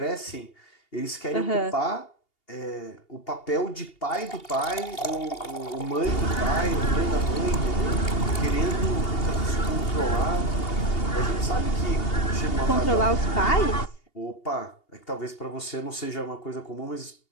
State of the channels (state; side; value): late; right; 2.8 ms